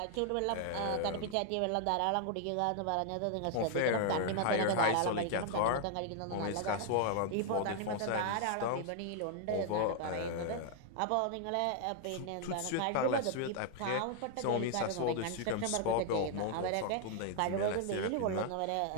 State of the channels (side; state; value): both; different; correlation 0.00